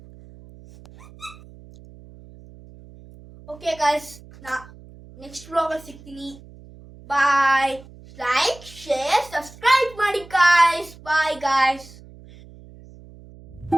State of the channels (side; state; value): right; noise; hum, 21 dB below the sound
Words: ಓಕೆ ಗಾಯ್ಸ್, ನಾ ನೆಕ್ಸ್ಟ್ ವ್ಲಾಗಲ್ಲಿ ಸಿಗ್ತೀನಿ. ಬಾಯ್. ಲೈಕ್, ಶೇರ್, ಸಬ್ಸ್ಕ್ರೈಬ್ ಮಾಡಿ ಗಾಯ್ಸ್. Bye guys.